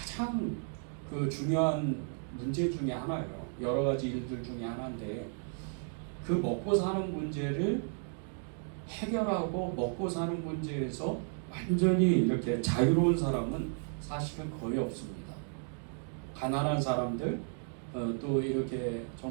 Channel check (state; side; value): silent; left; 55 dB below the other